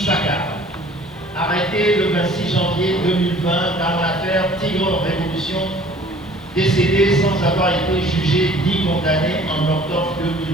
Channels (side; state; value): both; normal; correlation 0.52